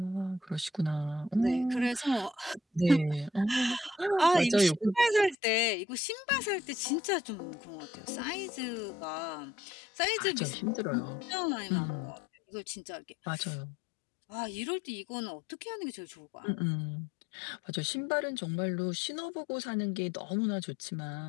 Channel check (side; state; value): right; drops out; at 5.4 s